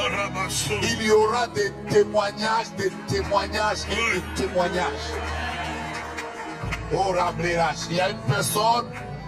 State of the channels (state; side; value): identical; both; correlation 1.00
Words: il y aura des témoignages et des témoignages. Oh, il y a une personne,